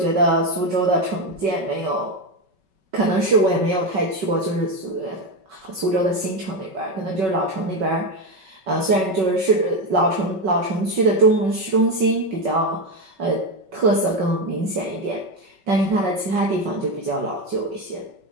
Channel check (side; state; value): left; late; 5.3 ms